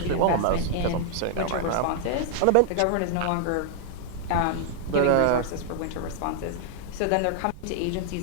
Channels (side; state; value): both; different; correlation 0.00